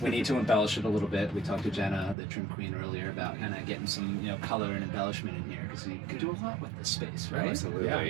We need to embellish it a little bit. We talked to Jenna, the trim queen, earlier about kind of getting some, color and embellishment in here because you can do a lot with this space, right?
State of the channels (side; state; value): left; drops out; at 2.1 s